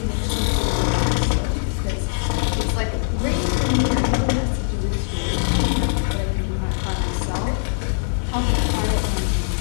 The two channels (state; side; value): silent; right; digital silence